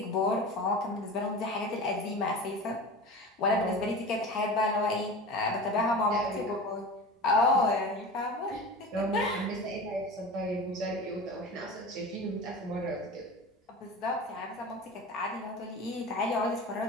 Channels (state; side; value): normal; both; correlation 0.32